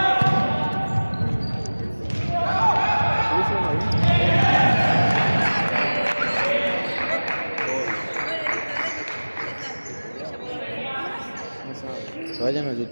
Que vayan al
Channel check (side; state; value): both; inverted; correlation -1.00